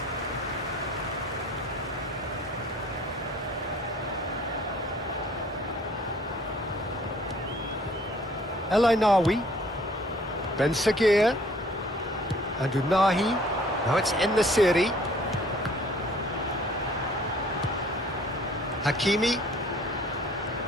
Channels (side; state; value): both; normal; correlation 0.55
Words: El Ainawi, Ben Sagir, and Unahi. Now it's En Nasiri. Hakimi,